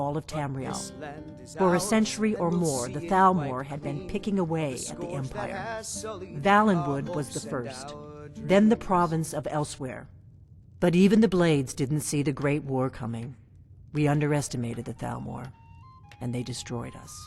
of Tamriel. For a century or more, the Thalmor had been picking away at the Empire. Valenwood was the first, then the province of Elsewhere. But even the Blades didn't see the Great War coming. We underestimated the Thalmor, and they destroyed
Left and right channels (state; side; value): identical; both; correlation 1.00